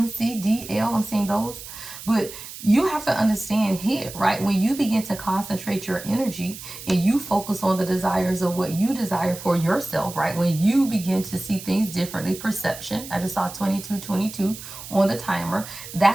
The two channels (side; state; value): right; noise; hiss, 13 dB below the sound